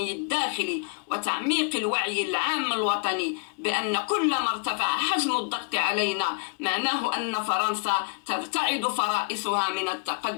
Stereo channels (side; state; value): right; quieter; 35.8 dB